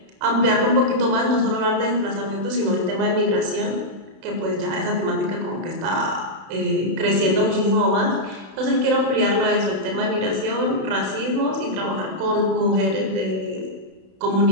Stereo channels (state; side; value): late; left; 31 ms